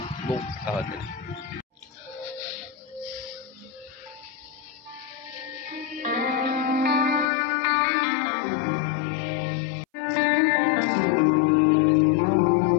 बघू काय होतं.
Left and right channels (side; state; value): right; drops out; at 7.2 s